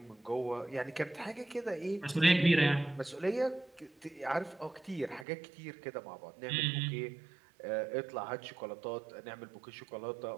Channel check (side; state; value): left; drops out; at 5.2 s